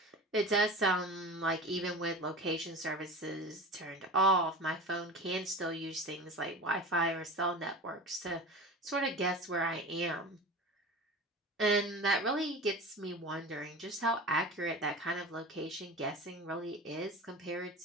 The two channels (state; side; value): normal; both; correlation 0.33